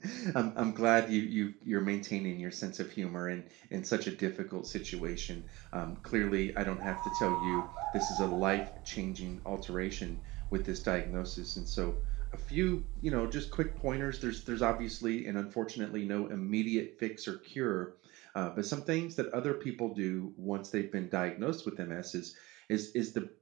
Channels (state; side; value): quieter; left; 21.1 dB